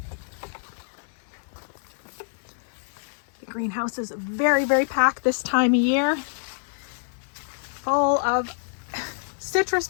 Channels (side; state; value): right; silent; 61 dB below the other